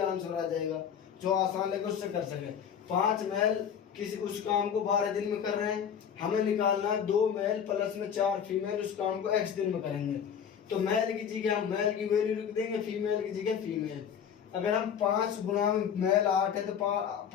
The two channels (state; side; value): quieter; right; 8.0 dB